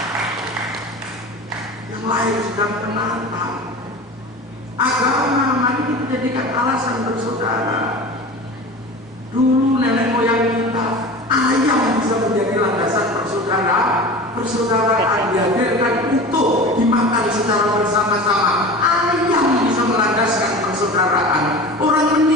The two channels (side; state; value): both; normal; correlation 0.35